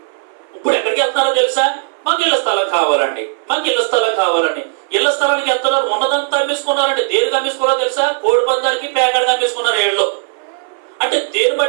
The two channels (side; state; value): left; silent; 60 dB below the other